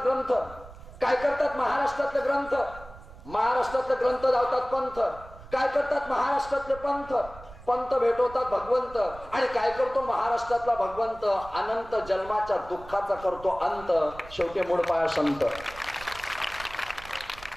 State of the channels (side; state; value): right; noise; rumble, 18 dB below the sound